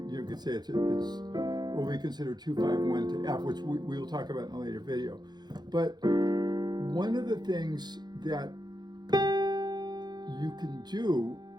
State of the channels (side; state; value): left; late; 0.20 ms